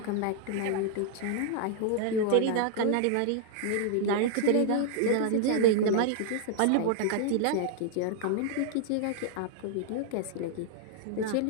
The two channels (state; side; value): different; both; correlation 0.00